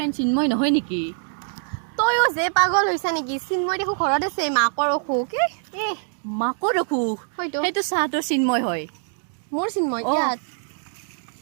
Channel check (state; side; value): silent; left; digital silence